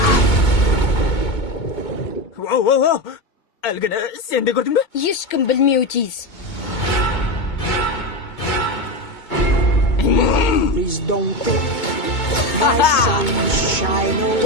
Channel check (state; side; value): late; right; 2.2 ms